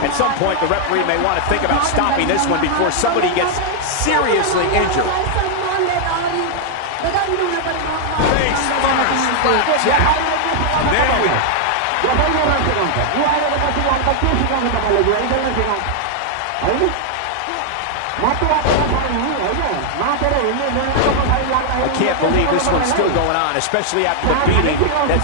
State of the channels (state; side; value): different; both; correlation -0.01